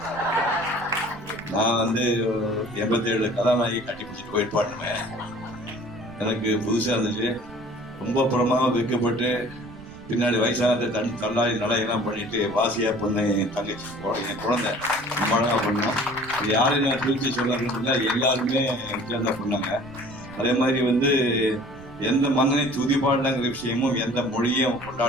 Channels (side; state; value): right; noise; rumble, 19 dB below the sound